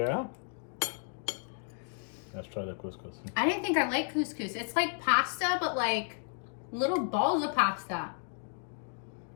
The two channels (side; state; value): right; silent; 56 dB below the other